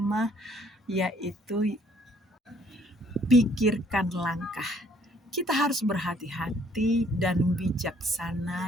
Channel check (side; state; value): both; normal; correlation 0.63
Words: yaitu pikirkan langkah. Kita harus berhati-hati dan